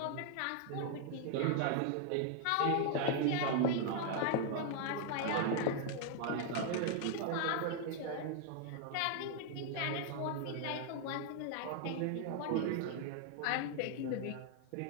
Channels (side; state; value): both; different; correlation 0.00